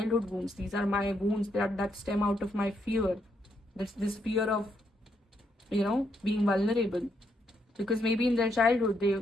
wounds. These are my wounds that stem out of my fear. This fear of, being vulnerable. Because maybe in their childhood,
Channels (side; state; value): both; normal; correlation 0.77